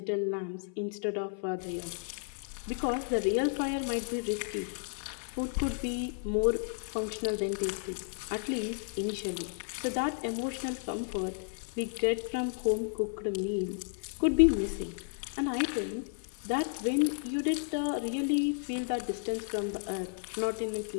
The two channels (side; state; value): right; silent; 56 dB below the other